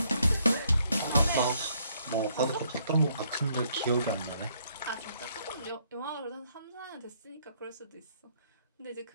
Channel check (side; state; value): both; inverted; correlation -0.69